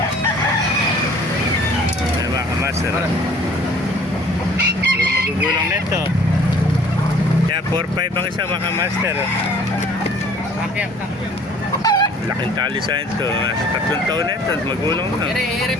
Ayan mga kamaster. Magugulang nito. Kaya 4-5 ang isa mga master. Laking tali sa ito. 3 taon na ito. Magulang na. Ere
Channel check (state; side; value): normal; both; correlation 0.53